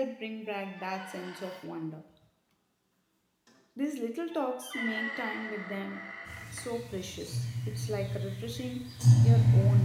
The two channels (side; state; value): both; identical; correlation 1.00